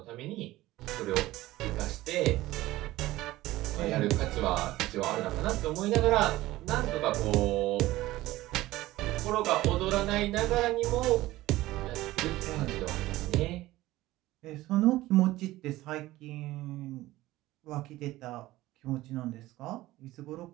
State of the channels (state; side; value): quieter; left; 17.1 dB